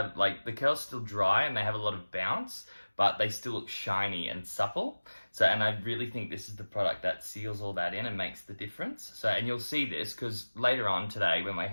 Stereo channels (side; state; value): both; inverted; correlation -1.00